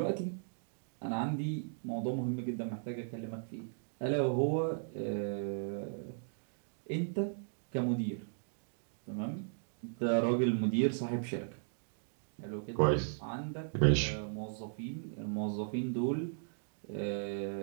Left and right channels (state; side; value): silent; left; digital silence